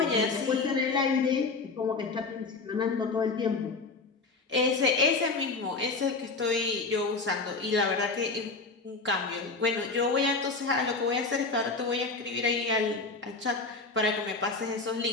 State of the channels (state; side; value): quieter; right; 3.9 dB